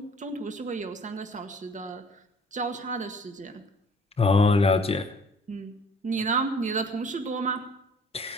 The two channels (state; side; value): normal; both; correlation 0.53